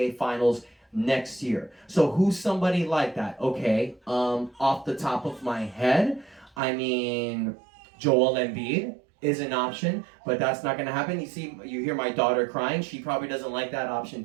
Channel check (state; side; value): drops out; left; at 6.6 s